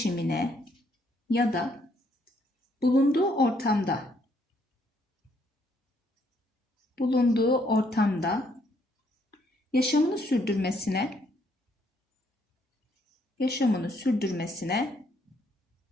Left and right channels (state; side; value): normal; both; correlation 0.70